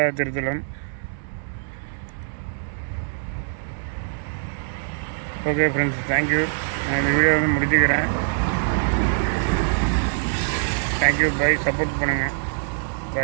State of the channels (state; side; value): silent; left; digital silence